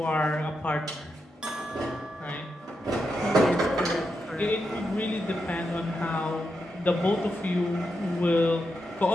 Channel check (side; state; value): both; normal; correlation 0.85